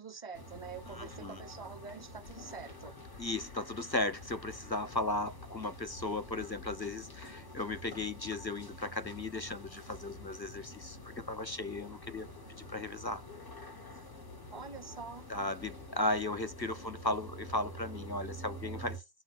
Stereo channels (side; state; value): right; late; 1.0 ms